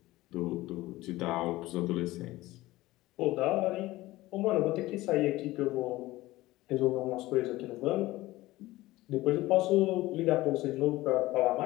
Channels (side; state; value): right; quieter; 18.1 dB